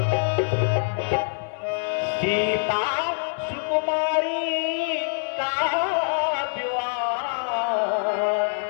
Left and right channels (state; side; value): silent; right; digital silence